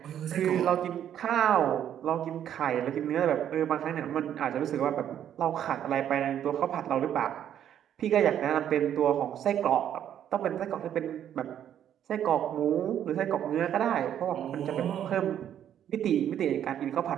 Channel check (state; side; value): quieter; left; 10.1 dB